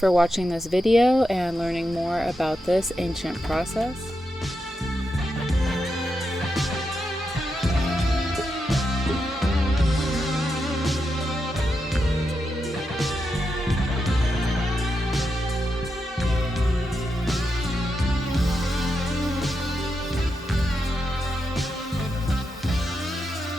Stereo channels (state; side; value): normal; both; correlation 0.86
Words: watching this video and learning more about this ancient process.